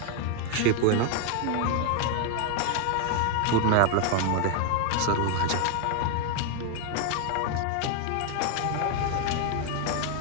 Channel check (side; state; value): both; different; correlation 0.00